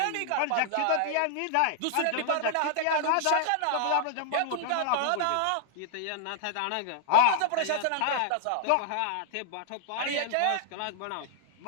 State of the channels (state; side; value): different; both; correlation -0.01